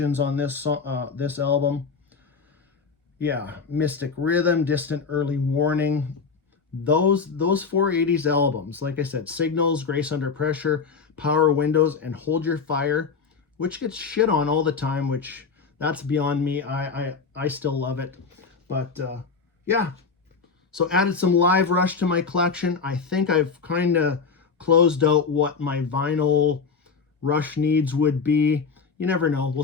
on this album. Yeah, Mystic Rhythm, Distant Early Warning. Those 480s albums, like I said, Signals, Grace Under Pressure, Power Windows, and Hold Your Fire, which gets shit on all the time, which that's beyond me. I still love it. But yeah, so added some Live Rush to my collection. I think I've kind of closed out what my vinyl Rush needs would be. You never know. We'll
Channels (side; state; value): right; quieter; 5.2 dB